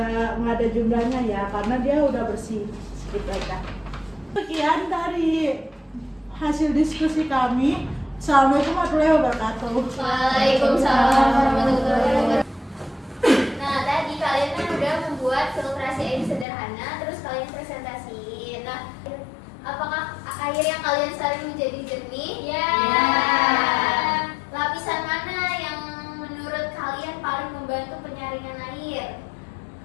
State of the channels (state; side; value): drops out; right; at 16.4 s